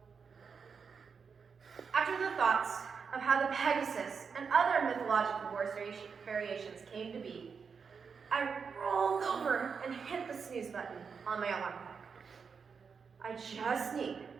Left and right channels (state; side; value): quieter; left; 5.8 dB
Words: After the thoughts of how the Pegasus and other mythological horse variations came to be, I rolled over and hit the snooze button on my alarm clock. I just need